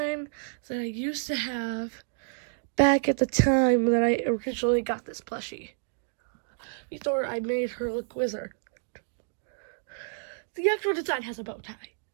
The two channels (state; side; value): silent; left; digital silence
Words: that I used to have back at the time that I originally got this plushie. Before I made her look wizard. The actual design has a bow tie.